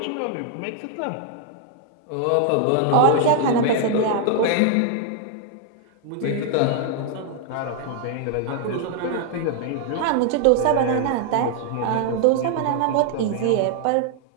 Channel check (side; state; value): both; different; correlation 0.00